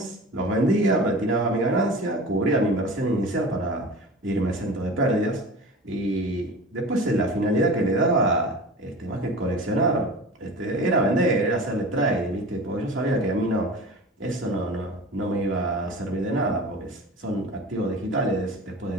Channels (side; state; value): both; normal; correlation 0.36